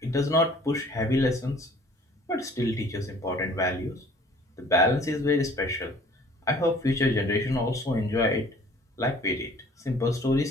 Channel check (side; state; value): both; normal; correlation 0.52